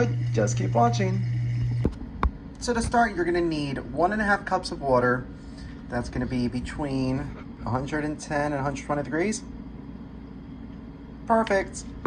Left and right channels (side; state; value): both; identical; correlation 1.00